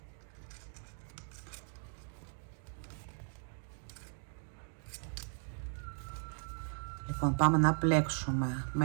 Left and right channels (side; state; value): left; silent; 53 dB below the other